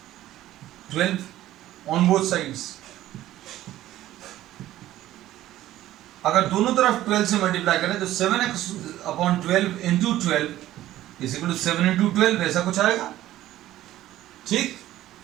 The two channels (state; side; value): quieter; left; 14.2 dB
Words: 12 on both sides. अगर दोनों तरफ 12 से मल्टीप्लाई करें तो 7x upon 12 into 12 is equal to 7 into 12, ऐसा कुछ आएगा, ठीक।